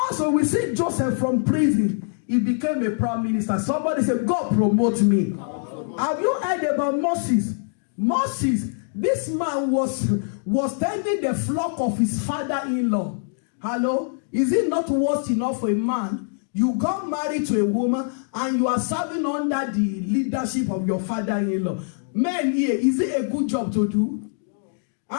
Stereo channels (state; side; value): silent; right; digital silence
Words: we see Joseph from prison. He became a prime minister. Somebody said, God promote me. Have you heard about Moses? Moses, this man was tending the flock of his father-in-law. Hello? Is it not worse enough for a man? You got married to a woman and you are serving under the leadership of your father-in-law. Men here, is it a good job to do?